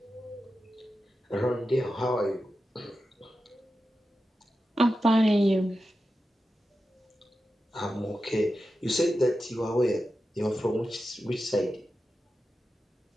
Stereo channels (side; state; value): both; normal; correlation 0.91